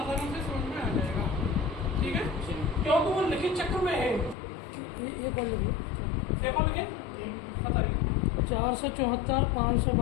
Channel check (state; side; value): drops out; right; at 4.4 s